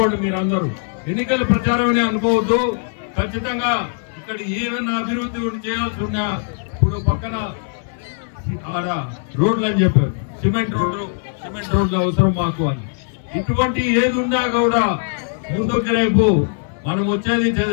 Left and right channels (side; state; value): right; silent; 66 dB below the other